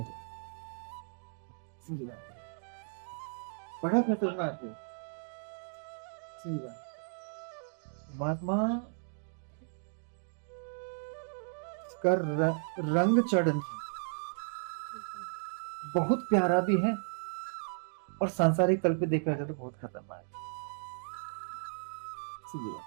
दो। समझ बात? बड़ा खतरनाक है। सही बात। महात्मा का रंग चढ़ना बहुत प्यारा भी है, और सांसारिक तल पे देखा जाए तो बहुत खतरनाक है। समझ बात?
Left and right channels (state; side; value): silent; left; digital silence